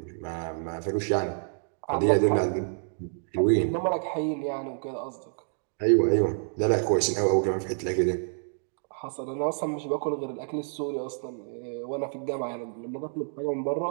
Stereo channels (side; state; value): left; silent; 59 dB below the other